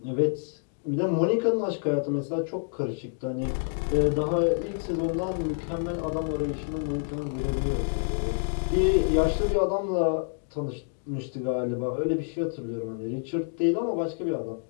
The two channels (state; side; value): silent; right; digital silence